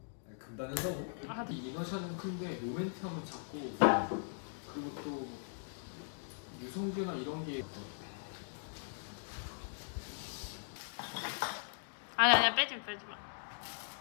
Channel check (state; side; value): silent; right; digital silence